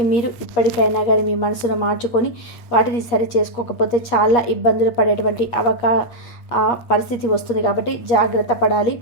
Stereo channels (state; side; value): late; right; 8.4 ms